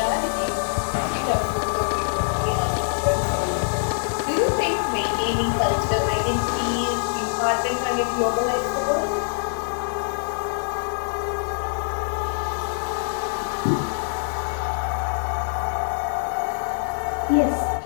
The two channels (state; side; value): silent; right; 56 dB below the other